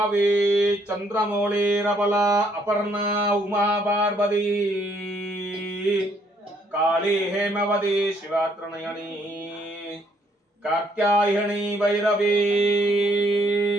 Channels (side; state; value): both; normal; correlation 0.68